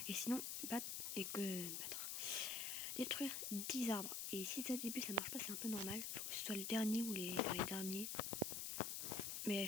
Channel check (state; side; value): noise; left; hiss, 2 dB below the sound